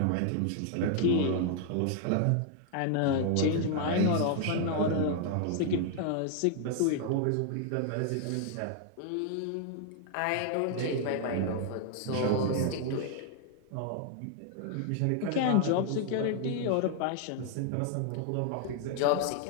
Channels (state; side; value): different; both; correlation 0.00